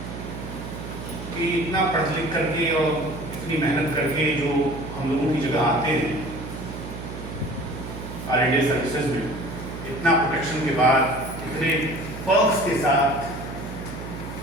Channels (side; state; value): right; noise; hum, 9 dB below the sound